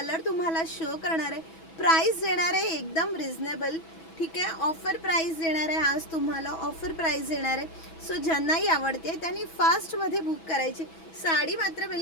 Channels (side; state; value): right; late; 6.2 ms